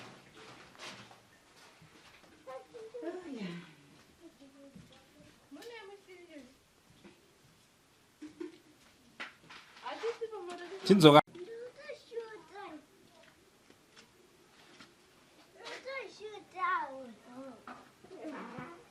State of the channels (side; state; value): both; identical; correlation 1.00